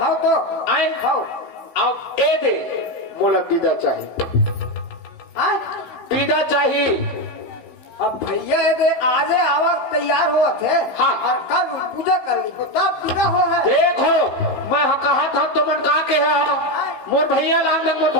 तो आए हाँ अब ए दे बोला विदा चाहिए विदा चाहिए और भैया ये दे आजे आवा तैयार हुआ थे। हाँ। और कल पूजा कर ली तो तब बिना हो है। देखो मैं कहा था तो मन का के है मोर भैया लान मोर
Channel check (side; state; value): right; late; 15 ms